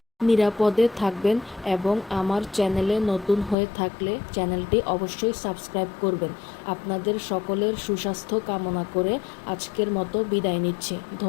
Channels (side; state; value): right; drops out; at 3.6 s